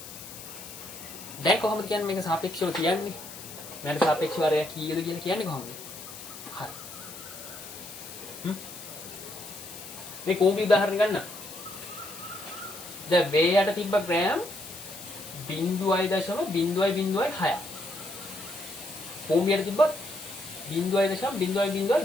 දැන් කොහොමද කියන්නේ මේක සාපේක්ෂව කියන්නේ? මෙයාට සාපේක්ෂව අරය කීයද කියලා කියන්නේ කොහොමද? හරි. මේ කෝපි උදාහරණ ගන්න. දැන් වේයට තිබ්බ ග්‍රෑම් 0.006. භූමියට තිබ්බ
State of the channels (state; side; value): noise; left; hiss, 13 dB below the sound